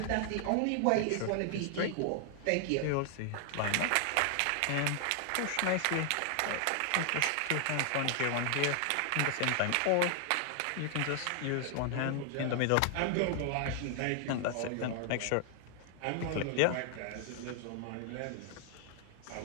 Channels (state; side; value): different; both; correlation 0.00